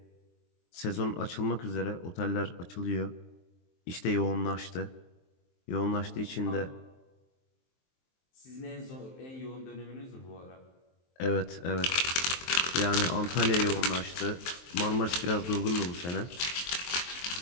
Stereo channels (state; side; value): late; right; 23 ms